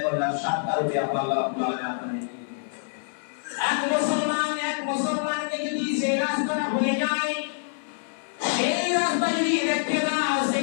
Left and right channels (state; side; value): silent; right; 61 dB below the other